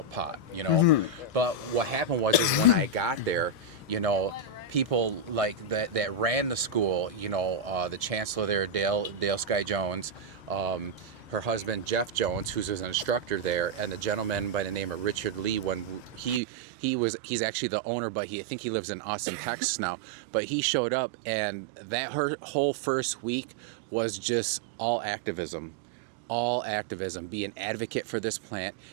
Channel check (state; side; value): drops out; left; at 16.4 s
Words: pot, Mm-hmm. But what happened was when I got there, people like that ran the school, the chancellor there, Dale Sky Jones, her husband Jeff Jones, who's an instructor there, and the gentleman by the name of Richard Lee. When he's actually the owner, but I think he lives in Austin, Texas now. But he showed up, and that her whole first week was just all activism. Be an advocate for this plant,